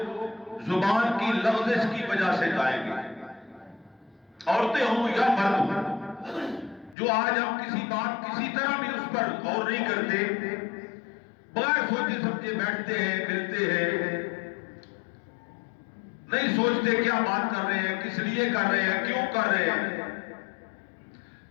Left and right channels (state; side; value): drops out; right; at 7.0 s